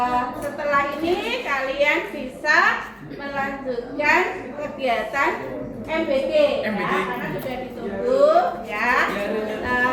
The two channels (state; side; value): identical; both; correlation 1.00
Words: Setelah ini kalian bisa melanjutkan kegiatan MBG ya, karena sudah ditunggu ya.